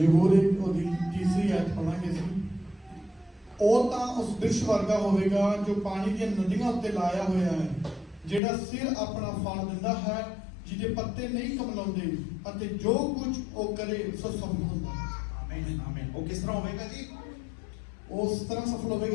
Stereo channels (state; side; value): drops out; right; at 8.4 s